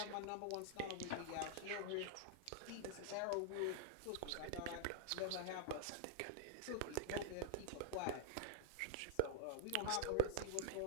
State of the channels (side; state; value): both; different; correlation 0.00